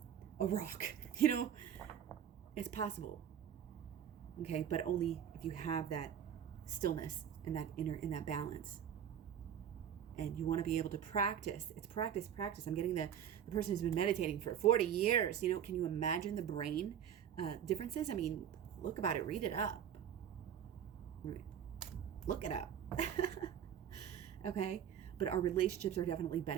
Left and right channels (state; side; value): quieter; left; 9.3 dB